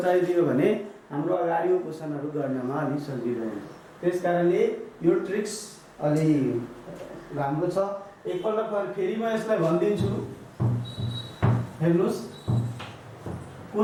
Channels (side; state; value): both; identical; correlation 1.00